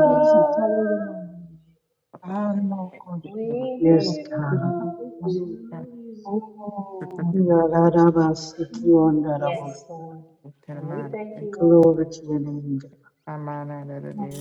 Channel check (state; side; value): identical; both; correlation 1.00